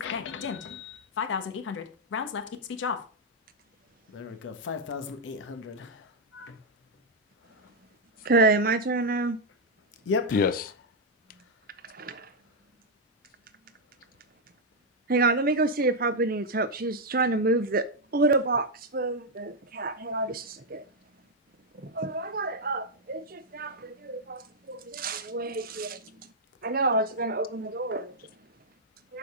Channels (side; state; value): both; normal; correlation -0.01